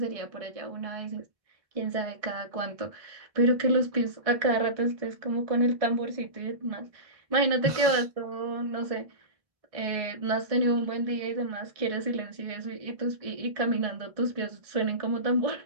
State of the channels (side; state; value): left; late; 1.6 ms